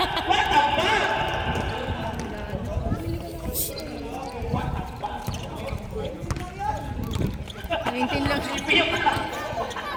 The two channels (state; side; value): identical; both; correlation 1.00